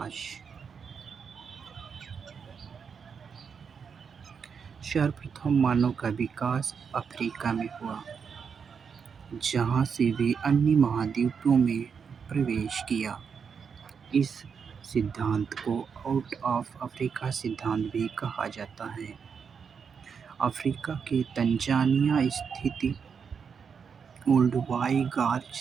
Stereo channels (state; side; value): quieter; left; 6.3 dB